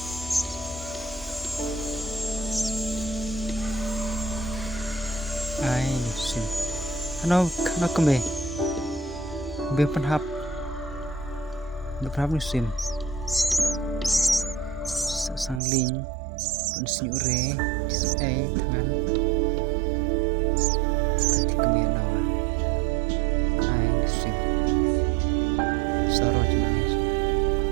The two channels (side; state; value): left; drops out; at 15.6 s